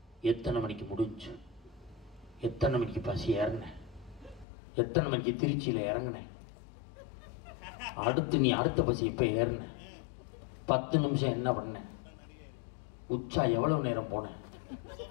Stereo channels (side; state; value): right; drops out; at 4.5 s